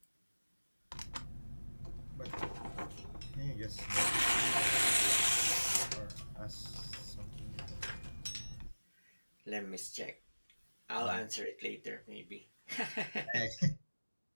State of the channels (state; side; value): inverted; both; correlation -1.00